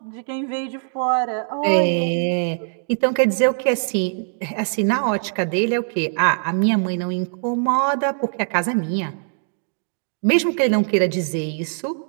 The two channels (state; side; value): silent; left; digital silence